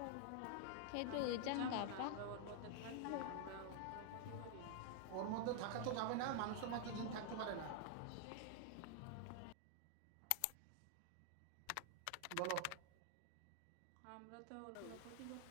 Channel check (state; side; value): different; both; correlation 0.00